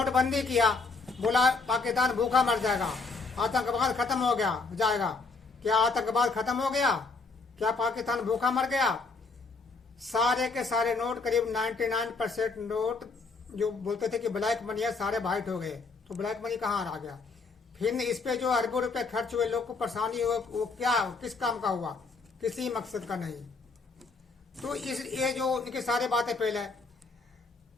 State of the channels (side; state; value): right; quieter; 4.1 dB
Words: किया, बोला पाकिस्तान भूखा मर जाएगा, आतंकवाद खत्म हो गया जाएगा। क्या आतंकवाद खत्म हो गया? क्या पाकिस्तान भूखा मर गया? सारे के सारे नोट, करीब 99% नोट जो बोलते थे कि ब्लैक मनी है, सारे वाइट हो गए। तो ब्लैक मनी कहाँ आ गया? फिर इस पे जो अरबों रुपए खर्च हुए, लोग को परेशानी हुई, वो क्या, किस काम का हुआ? किसी मकसद का नहीं। तो ये जो इनकी सारी बातें पहले,